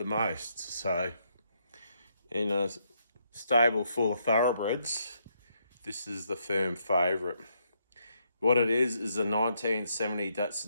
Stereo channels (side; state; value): both; inverted; correlation -0.76